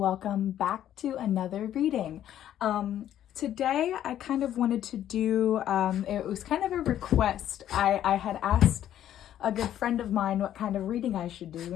back to another reading. Today, I kind of wanted to do, it was kind of a request. I had asked a good friend of mine what kind of reading I should do,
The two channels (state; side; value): quieter; right; 11.3 dB